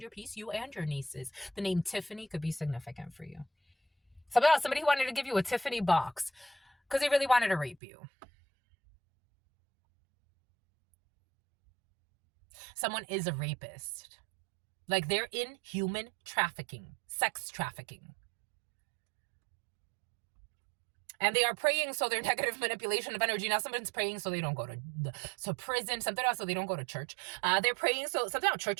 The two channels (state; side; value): drops out; left; at 7.8 s